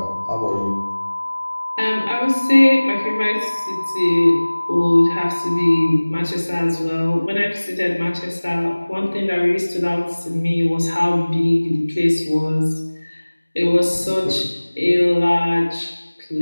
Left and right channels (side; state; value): both; inverted; correlation -1.00